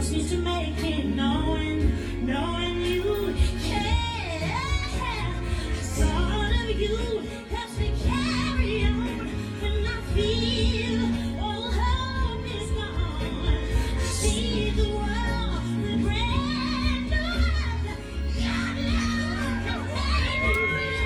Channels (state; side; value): identical; both; correlation 1.00